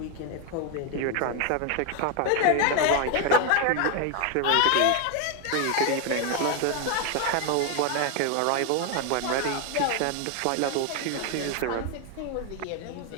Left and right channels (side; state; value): both; different; correlation 0.01